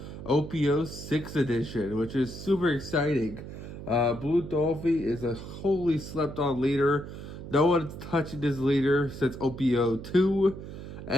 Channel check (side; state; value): right; noise; hum, 11 dB below the sound